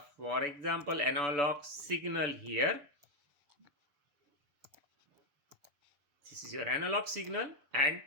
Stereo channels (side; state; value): left; late; 6.9 ms